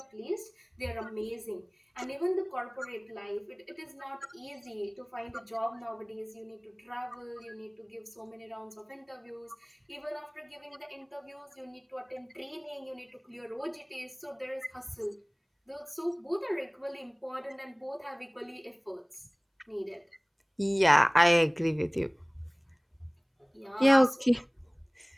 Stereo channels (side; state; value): both; identical; correlation 1.00